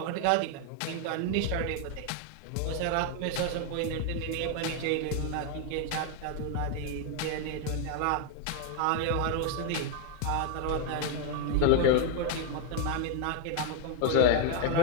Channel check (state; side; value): different; both; correlation 0.01